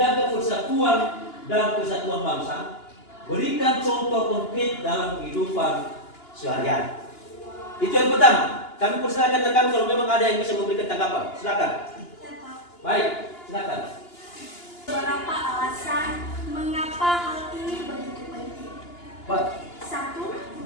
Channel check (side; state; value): right; late; 2.9 ms